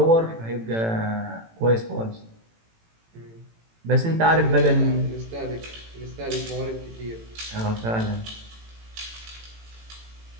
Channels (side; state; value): left; late; 18 ms